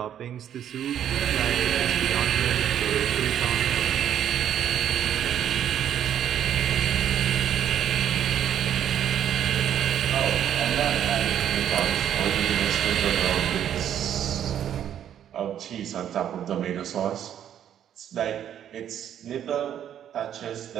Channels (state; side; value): quieter; left; 10.0 dB